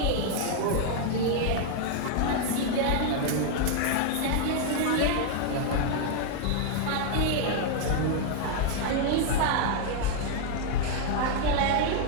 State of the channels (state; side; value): different; both; correlation 0.00